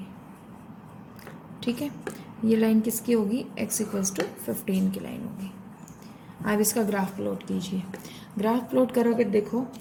ठीक है, ये लाइन किसकी होगी, x = 15 की लाइन होगी। अब इसका ग्राफ प्लॉट कीजिए। ग्राफ प्लॉट करोगे, देखो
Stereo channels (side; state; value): both; identical; correlation 1.00